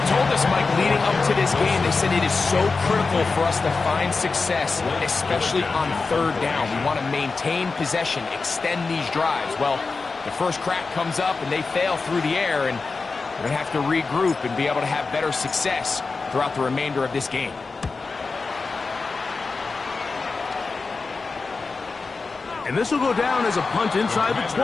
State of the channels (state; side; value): quieter; right; 4.2 dB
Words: told us, Mike, leading up to this game. They said it is so critical for us to find success, especially on 3rd down. We want to maintain possession, extend these drives. Well, the first crack comes up and they fail through the air, and we're going to have to regroup and be able to have better success throughout the remainder of this game. And this will go down as a punt inside the